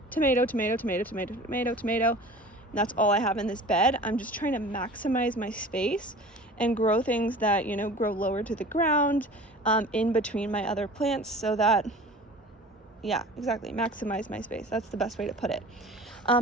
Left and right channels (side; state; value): both; normal; correlation 0.41